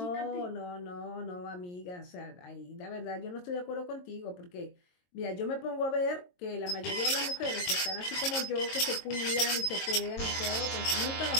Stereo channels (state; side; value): late; right; 22 ms